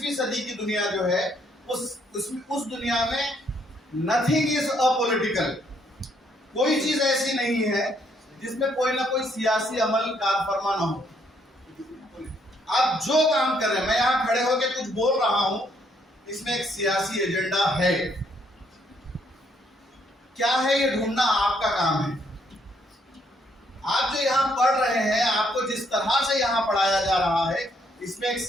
सदी की दुनिया जो है, उस दुनिया में नथिंग इज अपॉलिटिकल। कोई चीज ऐसी नहीं है जिसमें कोई ना कोई सियासी अमल कार फरमा ना हो। आप जो काम कर रहे हैं, मैं यहां खड़े होकर कुछ बोल रहा हूं, इसमें एक सियासी एजेंडा है। क्या है ये ढूंढना आपका काम है। आप जो यहाँ पढ़ रहे हैं, आपको जिस तरह से यहाँ पढ़ाया जा रहा है, इसमें एक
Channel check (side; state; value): both; normal; correlation 0.70